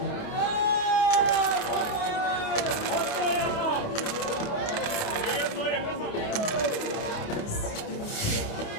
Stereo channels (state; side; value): late; right; 28 ms